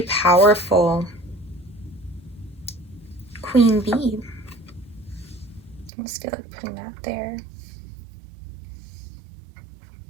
powerful. Queen Bee. I just feel like putting that there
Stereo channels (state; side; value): drops out; left; at 5.9 s